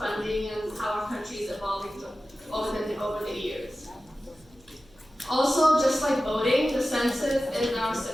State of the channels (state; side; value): noise; left; hum, 29 dB below the sound